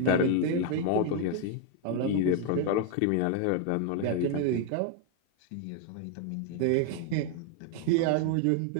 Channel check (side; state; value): both; different; correlation 0.00